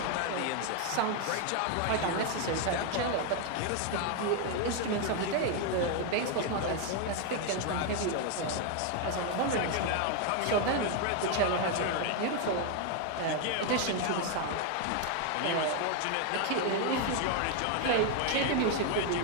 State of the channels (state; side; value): different; both; correlation 0.01